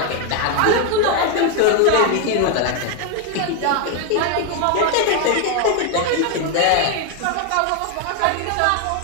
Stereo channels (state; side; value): different; both; correlation 0.01